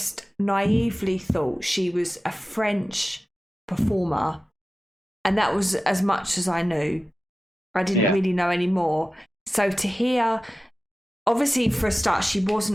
naively thought she was a French performer. And that was as much as I knew. I didn't really know any more. So to hear, obviously for a start, she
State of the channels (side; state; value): both; normal; correlation 0.95